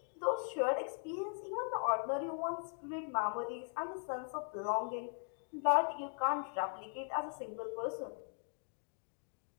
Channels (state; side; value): silent; right; 51 dB below the other